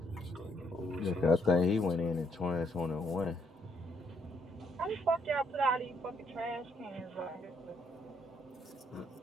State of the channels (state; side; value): normal; both; correlation 0.71